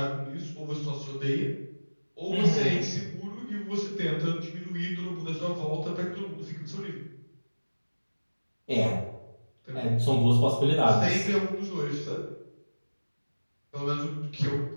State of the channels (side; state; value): both; inverted; correlation -1.00